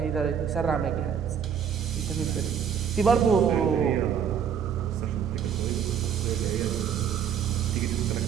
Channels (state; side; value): quieter; left; 7.9 dB